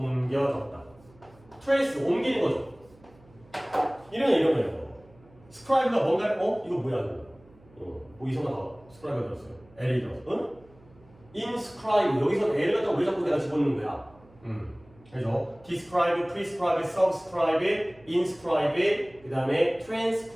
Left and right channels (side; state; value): right; noise; hum, 27 dB below the sound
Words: trace 옮기는 거죠. 이런 거예요. 스크라이브가 뭔가 이거 뭐야 이거? 이상하다. 스크라이브가 들었어요. L이 들었어. inscribe 여기서 L을 갖다가 왜 자꾸 내가 집어넣는 거야? 그래서 describe, prescribe, subscribe, inscribe, 그 다음에